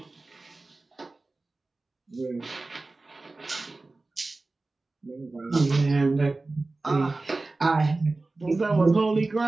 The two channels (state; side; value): quieter; left; 3.3 dB